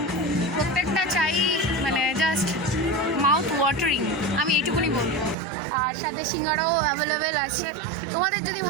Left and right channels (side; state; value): left; drops out; at 5.4 s